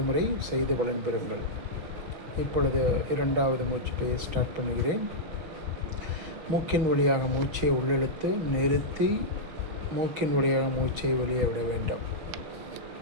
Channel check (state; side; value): late; left; 6.0 ms